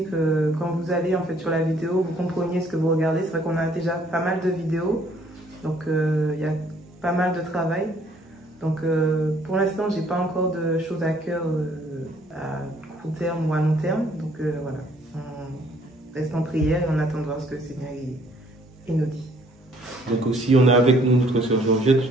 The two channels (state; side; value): normal; both; correlation 0.63